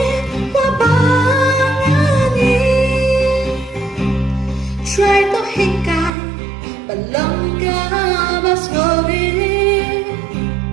Try to hikay, balong ka ba sorry?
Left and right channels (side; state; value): left; drops out; at 6.1 s